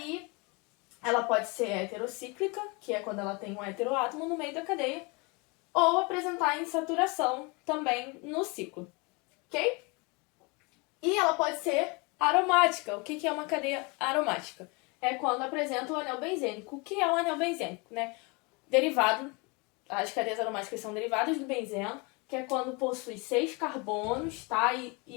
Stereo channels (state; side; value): quieter; right; 29.1 dB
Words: ela pode ser heterocíclica, que é quando ela tem um heteroátomo no meio da cadeia, ou apresentar insaturação também no ciclo, ok? E ela pode ser aromática. O que é uma cadeia aromática? É quando apresenta o anel benzênico. O que é um anel benzênico, né? Derivado, as cadeias aromáticas são derivadas do benzeno, que é quando possui 6 carbonos, tá?